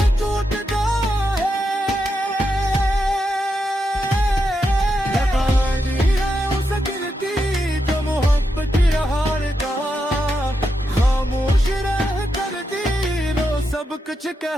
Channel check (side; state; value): both; normal; correlation 0.85